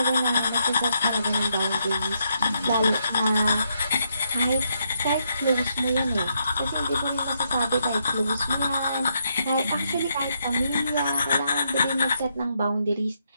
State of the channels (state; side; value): inverted; both; correlation -0.78